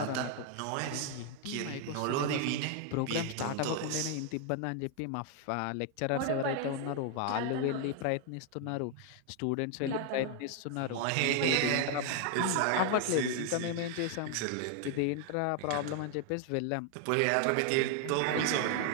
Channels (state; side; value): different; both; correlation 0.00